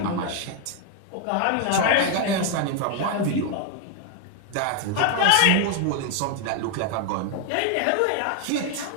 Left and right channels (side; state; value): both; different; correlation 0.01